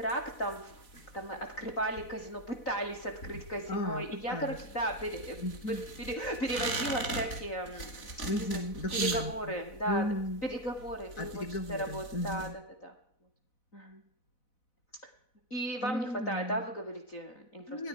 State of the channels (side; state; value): right; late; 4.0 ms